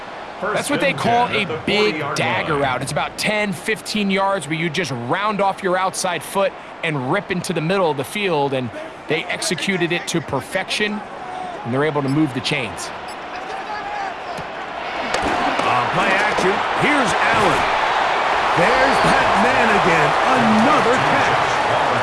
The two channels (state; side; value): identical; both; correlation 1.00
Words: That's what they call a big dagger route. It's about 10, 15 yards where you just round off your outside foot and rip into the middle of the field, and they executed it to perfection, and they're able to move the chains. Play action. Here's Allen. There's that man again. Another catch.